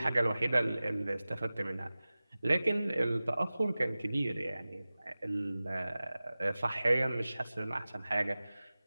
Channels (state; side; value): inverted; both; correlation -0.97